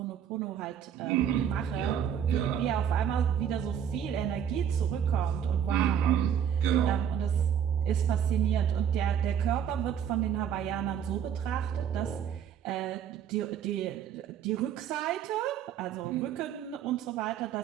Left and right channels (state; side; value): quieter; left; 8.8 dB